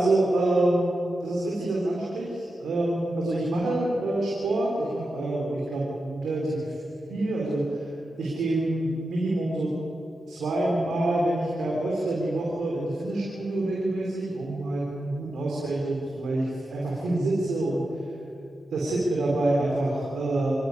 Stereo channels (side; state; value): both; normal; correlation 0.89